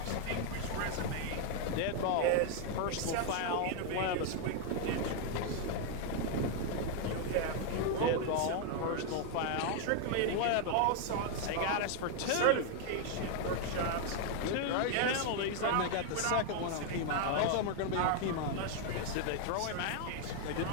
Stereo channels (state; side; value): different; both; correlation 0.00